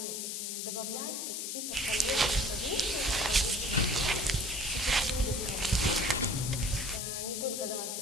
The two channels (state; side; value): noise; left; hiss, 3 dB below the sound